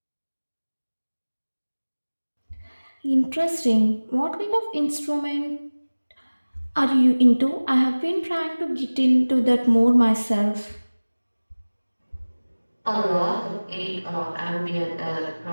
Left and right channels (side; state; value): both; inverted; correlation -1.00